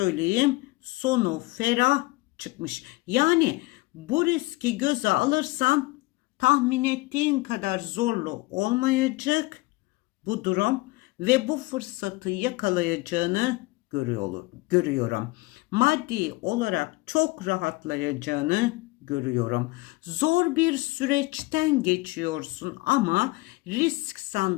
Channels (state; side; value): quieter; right; 22.3 dB